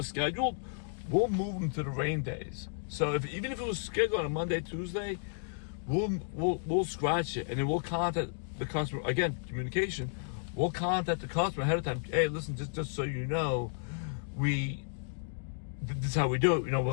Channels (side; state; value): right; silent; digital silence